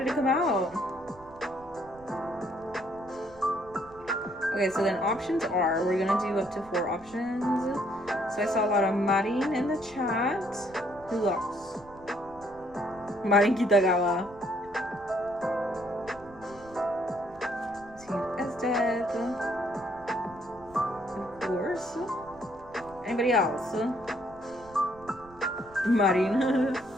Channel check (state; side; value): noise; right; rumble, 23 dB below the sound